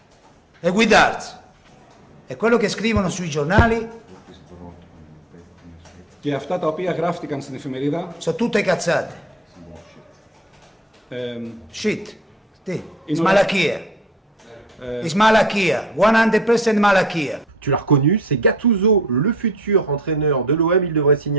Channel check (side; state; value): both; normal; correlation 0.54